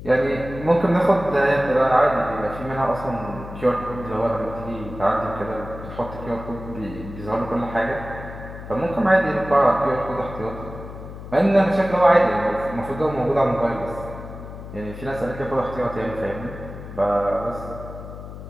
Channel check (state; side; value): noise; left; hum, 12 dB below the sound